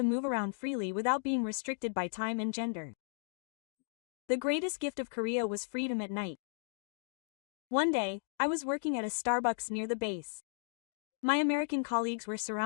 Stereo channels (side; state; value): right; silent; digital silence